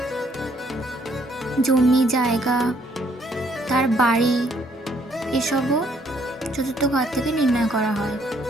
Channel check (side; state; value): both; normal; correlation 0.67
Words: জমি জায়গা, তার বাড়ি এসবও চতুর্থ ঘর থেকে নির্ণয় করা হয়।